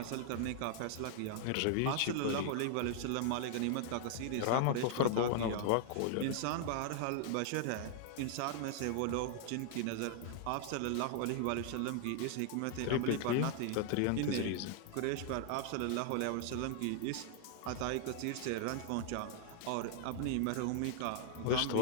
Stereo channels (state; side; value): different; both; correlation 0.00